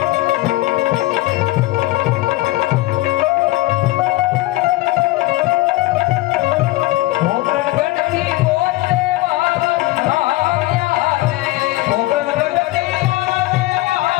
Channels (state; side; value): quieter; right; 18.4 dB